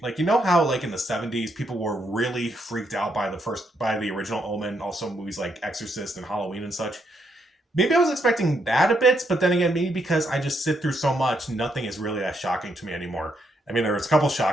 Like, you know how like in the 70s people were really freaked out by the original Omen, also movies like Exorcist and Halloween and such. Maybe I was expecting that a bit, but then again, maybe because I just sit through so much, nothing is really that shocking to me anymore. I mean, there was a couple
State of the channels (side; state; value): both; normal; correlation 0.77